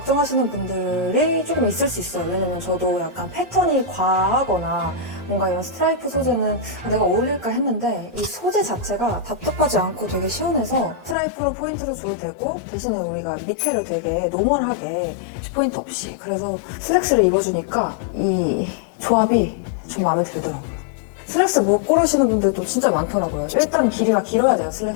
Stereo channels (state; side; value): drops out; right; at 11.2 s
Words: 분들이 조금 있을 수 있어요. 왜냐면 저도 약간 패턴이 과하거나 뭔가 이런 스트라이프 소재는 내가 어울릴까 했는데 이 소재 자체가 답답하지 않고 되게 시원해서 스트라이프로 포인트를 줘도 되고 대신에 우리가 밑에를 되게 노멀하게 포인트 없이 그래서 슬랙스를 입어주니까 이 조합이 좀 마음에 들더라고요. 슬랙스 못 고르시는 분들도 진짜 많더라고요. 일단 길이가 길어야 돼요,